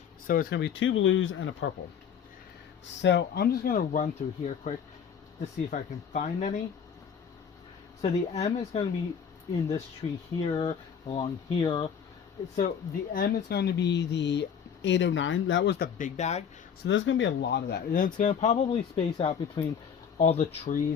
So it's going to be 2 blues and a purple. So I'm just going to run through here quick to see if I can find any. So the M is going to be in this tree here, along here. So the M is going to be the 809. That was the big bag. So there's going to be a lot of that. And it's going to probably space out between all the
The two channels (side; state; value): right; quieter; 7.4 dB